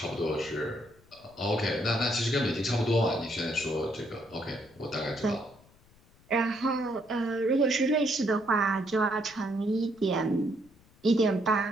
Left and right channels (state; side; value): noise; left; rumble, 29 dB below the sound